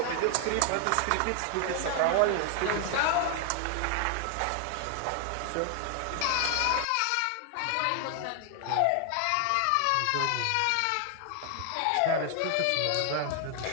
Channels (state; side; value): different; both; correlation 0.00